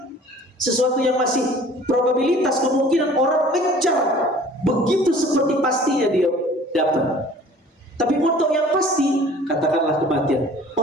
sesuatu yang masih probabilitas, kemungkinan orang kejar begitu seperti pastinya dia dapat. Tapi untuk yang pasti, katakanlah kematian,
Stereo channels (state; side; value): normal; both; correlation 0.49